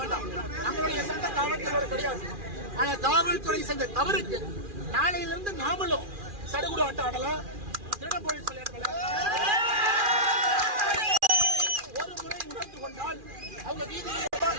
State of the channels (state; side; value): late; left; 2.4 ms